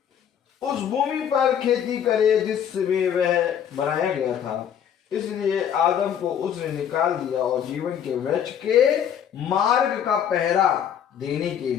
उस भूमि पर खेती करे जिसमें वह बनाया गया था, इसलिए आदम को उसने निकाल दिया और जीवन के वृक्ष के मार्ग का पहरा देने के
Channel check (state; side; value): quieter; right; 8.9 dB